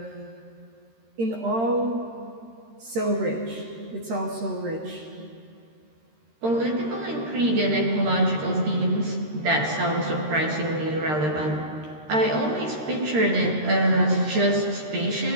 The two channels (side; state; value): left; late; 13 ms